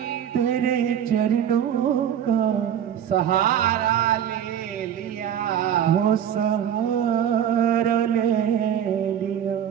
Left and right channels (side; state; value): left; quieter; 9.6 dB